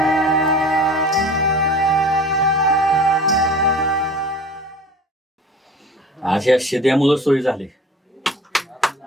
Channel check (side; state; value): both; normal; correlation 0.42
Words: आज या शिद्यामुळं सोयी झाली.